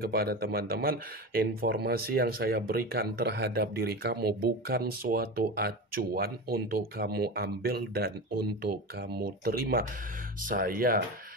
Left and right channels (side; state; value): both; normal; correlation 0.26